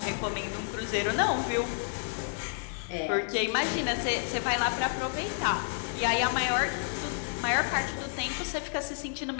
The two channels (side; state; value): right; silent; digital silence